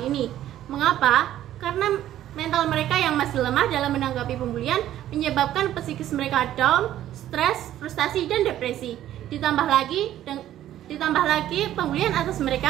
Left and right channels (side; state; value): left; quieter; 12.5 dB